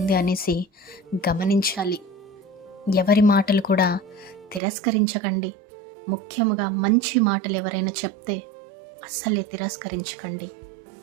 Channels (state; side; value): drops out; left; at 4.6 s